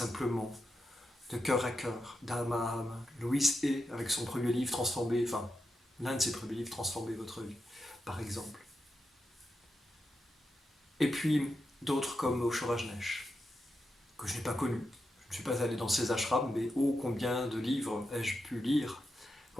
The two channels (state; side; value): normal; both; correlation 0.87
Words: de cœur à cœur, d'âme à âme. Louise Hay, avec son premier livre l'un de ses premiers livres, Transformer votre vie, par exemple. Et puis d'autres comme Osho Rajneesh, que je n'ai pas connu. Je ne suis pas allé dans ses ashrams, mais oh, combien de livres ai-je pu lire,